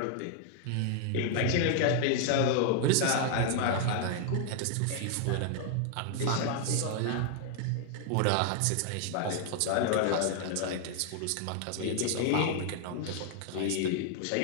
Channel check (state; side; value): different; both; correlation 0.00